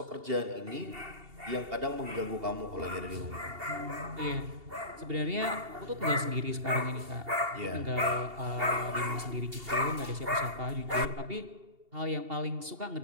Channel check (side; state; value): left; late; 2.8 ms